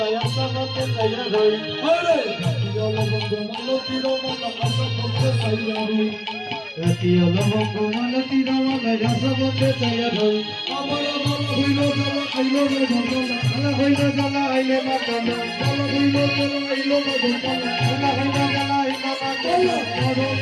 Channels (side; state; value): both; identical; correlation 1.00